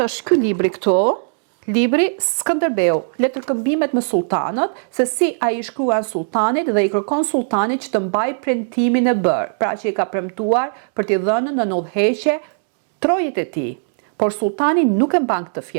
është ky libri këtu. Libri Skënderbeu, letërkëmbimet me sultanët, se si ai i shkruan sultanit dhe i kërkon sultanit që të mbaj premtimin e bërë, pra që i ka premtuar për t'i dhënë në udhëheqje trojët e tij. Por sultani nuk e mban këtë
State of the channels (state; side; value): silent; left; digital silence